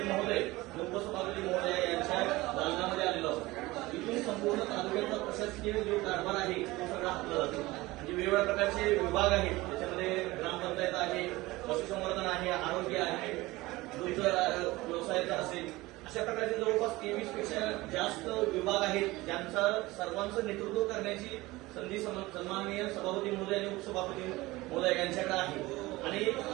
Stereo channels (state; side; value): quieter; left; 20.0 dB